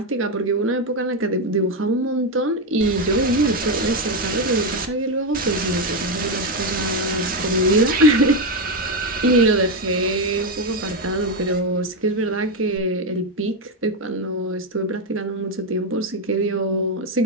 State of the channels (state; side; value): normal; both; correlation 0.08